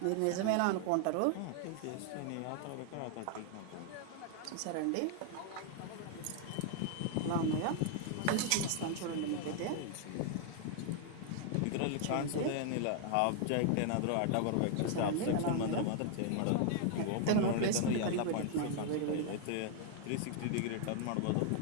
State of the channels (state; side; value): different; both; correlation 0.00